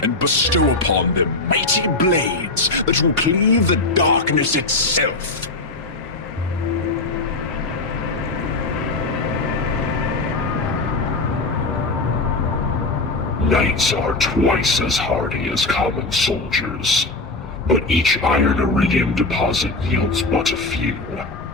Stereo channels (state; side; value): quieter; right; 3.2 dB